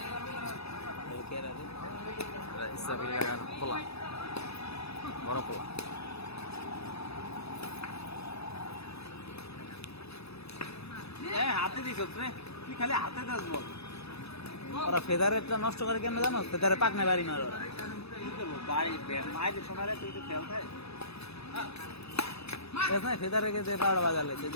পোলা বড় পোলা। হাতে দিছ রে তুই খালি হাতে দাস বল ওরা ফেদারেরটা নষ্ট করে কেন জানো ফেদারে পাক নাই বাড়ি মারো ওরা। কি করবো বাড়ি মায়ের শোনারে তুই তো খেল খায় এস নাই ফেদারে গেছে 12 বাজালে যে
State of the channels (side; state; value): right; late; 0.79 ms